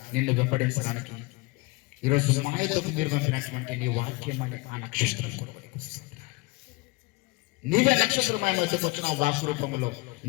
నిన్ను వెంబడించడానికి ఈరోజు మాయతకు మీరు పంపినటువంటి నీ వాక్యం అనే ఆ నక్షత్రం నీవే నక్షత్రమైన వచ్చిన వాక్ రూపంలో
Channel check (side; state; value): right; quieter; 24.2 dB